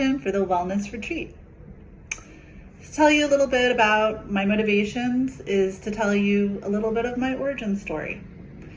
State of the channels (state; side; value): identical; both; correlation 1.00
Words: for the wellness retreat. To tell you a little bit about my motivations is to tell you a little bit of my origin story.